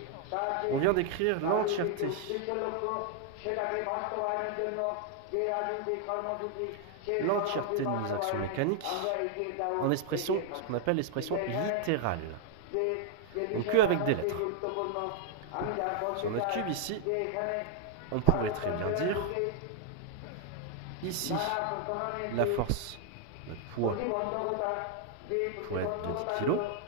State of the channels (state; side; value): different; both; correlation 0.00